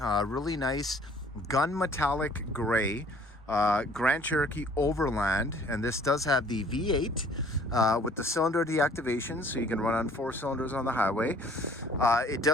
nice gun metallic gray Grand Cherokee Overland, and this does have the V8 with the cylinder deactivation, so you can run on 4 cylinders on the highway. It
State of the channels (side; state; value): both; normal; correlation 0.56